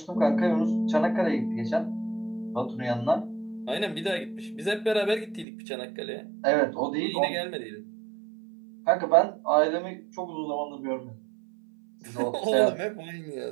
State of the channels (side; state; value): left; drops out; at 5.5 s